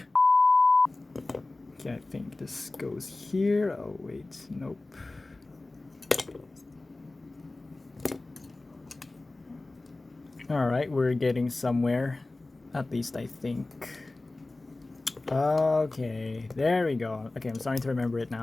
Okay, I think this goes here. Oh wait, nope. Alright, we're getting somewhere. At least I think. Okay, there we go. Okay, I'm starting to remember it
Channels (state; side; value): quieter; right; 3.0 dB